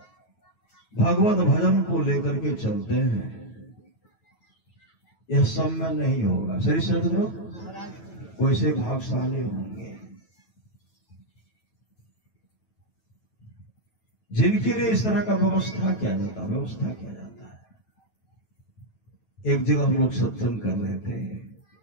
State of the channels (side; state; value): right; late; 9.2 ms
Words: भगवत भजन को लेकर के चलते हैं, यह सब में नहीं होगा। श्री सदगुरु वैसे भागशाली होंगे जिनके लिए इस तरह का व्यवस्था किया जाता है। एक जगह हम लोग सत्संग कर रहे थे,